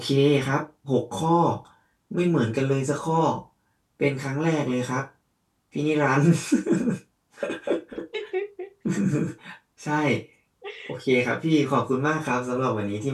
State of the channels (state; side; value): identical; both; correlation 1.00